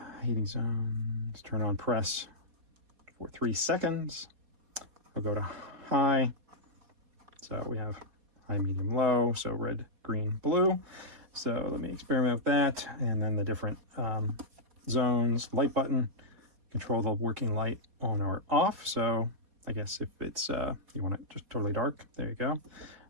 heating zones, turn on press for 3 seconds. I'll go to high, so we have high, medium, low, so red, green, blue. So let me experiment with that, and then the different zones. Light button, control the working light on or off. So I guess if it's you want it just totally dark, there you go.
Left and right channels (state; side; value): late; left; 4.3 ms